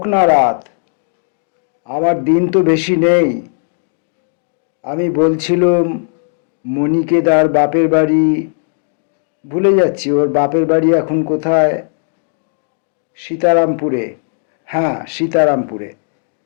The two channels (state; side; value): silent; right; digital silence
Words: না রাত, আমার দিন তো বেশি নেই। আমি বলছিলাম মণিকে তার বাপের বাড়ি, ভুলে যাচ্ছি ওর বাপের বাড়ি এখন কোথায়। সীতারামপুরে। হ্যাঁ, সীতারামপুরে।